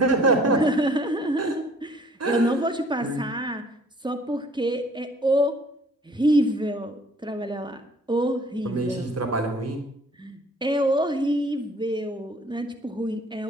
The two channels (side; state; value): both; normal; correlation 0.56